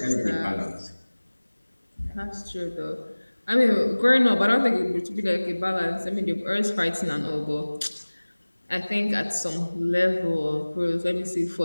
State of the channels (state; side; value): inverted; both; correlation -1.00